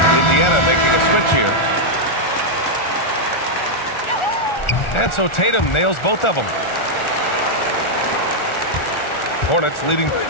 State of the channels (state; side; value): late; right; 1.4 ms